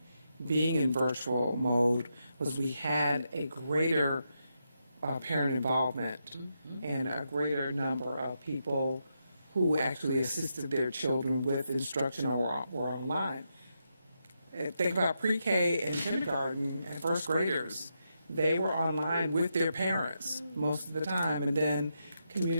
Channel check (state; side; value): inverted; both; correlation -0.83